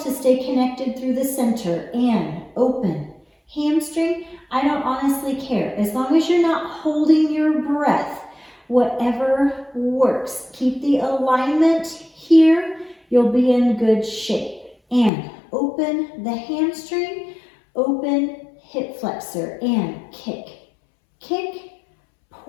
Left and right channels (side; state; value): right; drops out; at 15.1 s